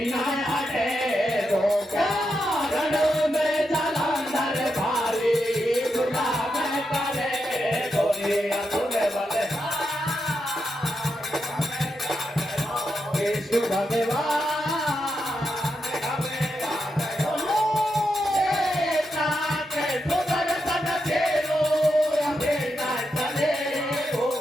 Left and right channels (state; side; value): normal; both; correlation 0.85